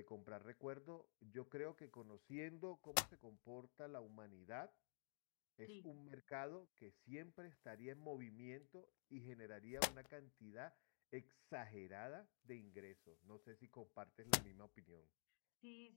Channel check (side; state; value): right; silent; digital silence